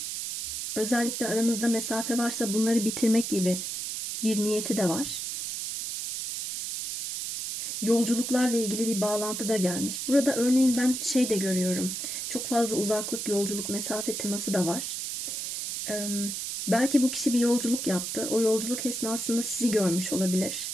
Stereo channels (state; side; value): noise; right; hiss, 4 dB below the sound